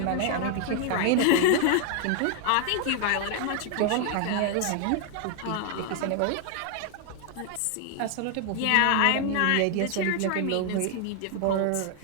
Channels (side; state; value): both; different; correlation 0.00